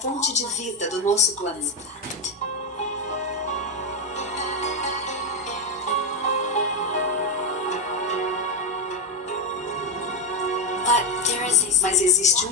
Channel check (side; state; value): both; normal; correlation 0.07